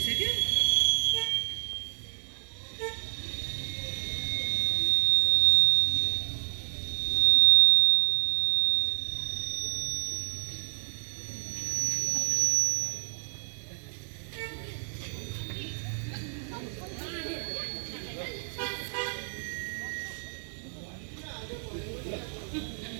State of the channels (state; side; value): silent; left; 58 dB below the other